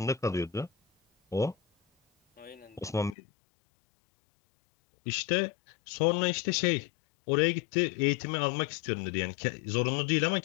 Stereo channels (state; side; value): drops out; right; at 3.2 s